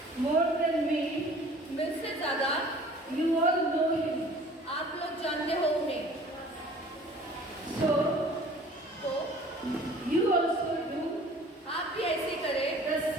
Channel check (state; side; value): normal; both; correlation 0.49